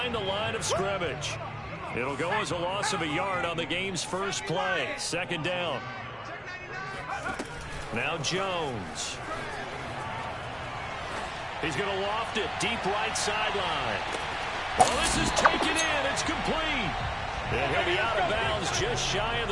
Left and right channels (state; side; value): identical; both; correlation 1.00